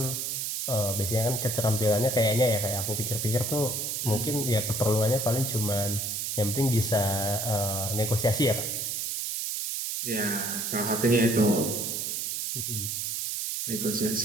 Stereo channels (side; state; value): right; noise; hiss, 2 dB below the sound